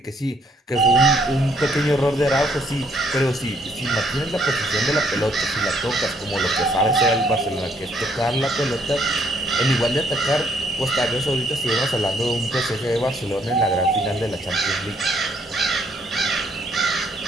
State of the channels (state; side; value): normal; both; correlation 0.68